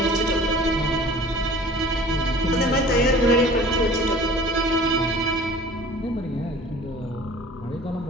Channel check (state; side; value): normal; both; correlation 0.46